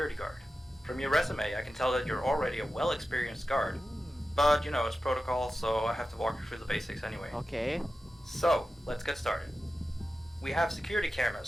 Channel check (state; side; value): normal; both; correlation 0.93